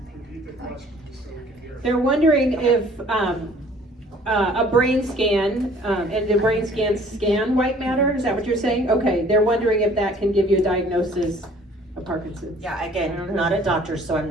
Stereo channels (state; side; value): normal; both; correlation 0.54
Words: They're wondering if a brain scan, and the brain scans scan white matter, is that what you're saying? Okay, they're wondering if that can give you a diagnosis of Parkinson's. Yeah, I again, don't know. not a doctor, so I'm